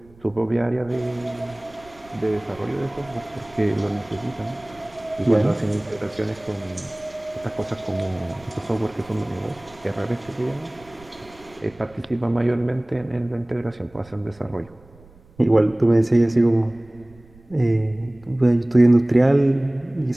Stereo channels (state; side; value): noise; right; rumble, 25 dB below the sound